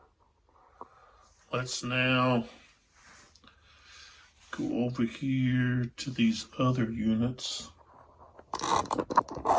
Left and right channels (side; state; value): both; identical; correlation 1.00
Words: Let's now go over here to these other units.